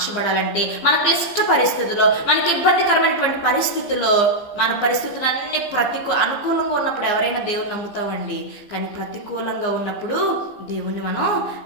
మన క్లిష్ట పరిస్థితుల్లో, మనకి ఇబ్బందికరమైనటువంటి పరిస్థితుల్లో, మన పరిస్థితులన్నీ అనుకూలంగా ఉన్నప్పుడు ఎవరైనా దేవుని నమ్ముతామండి. కానీ ప్రతికూలంగా ఉన్నప్పుడు దేవుణ్ణి మనం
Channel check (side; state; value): right; late; 15 ms